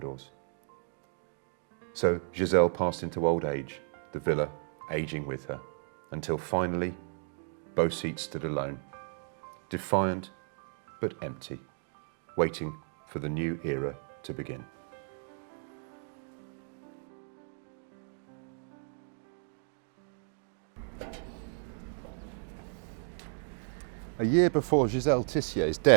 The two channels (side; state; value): left; silent; 55 dB below the other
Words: So Jizelle passed into old age, the villa aging with her, until finally Beau Site stood alone, defiant but empty, waiting for the new era to begin. A year before Jizelle Tissier's